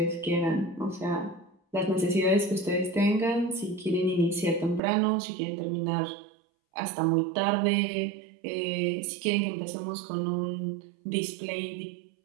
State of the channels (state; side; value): drops out; left; at 4.8 s